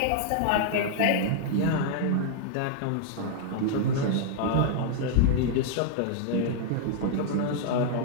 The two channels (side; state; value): both; different; correlation -0.01